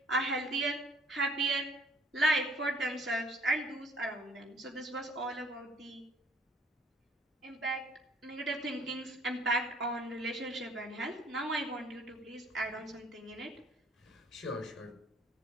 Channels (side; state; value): both; normal; correlation 0.58